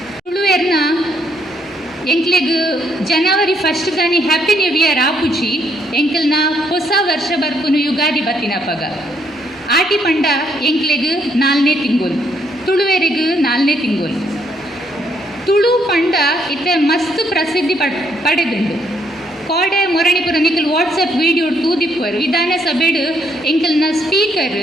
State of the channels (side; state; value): both; normal; correlation 0.72